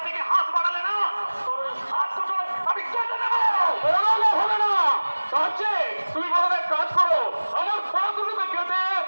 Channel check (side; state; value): both; inverted; correlation -1.00